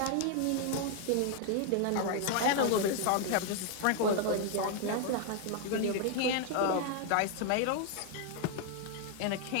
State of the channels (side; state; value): both; different; correlation 0.00